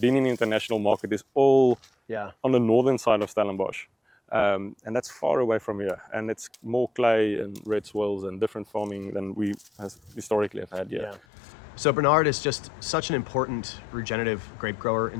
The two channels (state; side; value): drops out; right; at 11.2 s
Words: in the international market is all on the northern side of Stellenbosch. And that's far away from here. And it's more clay and red soils and different farming than we historically have had here. Yeah. So Bernard is just such an important regenerative grape grower